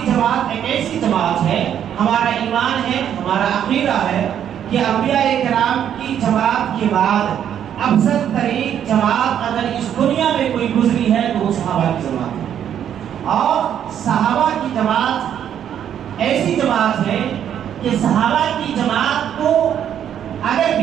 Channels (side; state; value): left; quieter; 9.5 dB